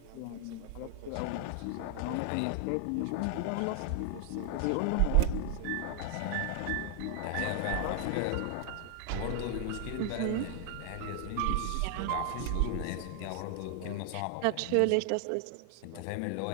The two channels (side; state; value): both; different; correlation 0.00